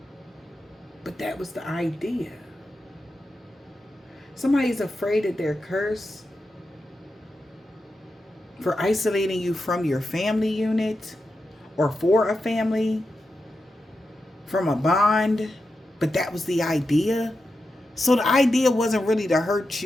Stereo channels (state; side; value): normal; both; correlation 0.89